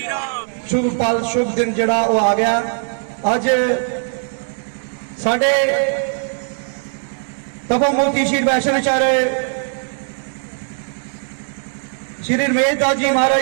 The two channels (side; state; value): left; silent; 61 dB below the other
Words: शुभ पल शुभ दिन जड़ा वो आ गया। अज साडे तपोमूर्ति श्री वैष्णवाचार्य श्री रमेश दास जी